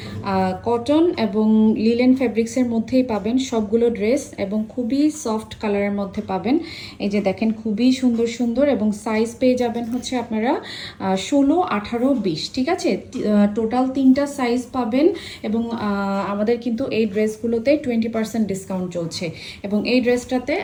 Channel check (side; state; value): both; identical; correlation 1.00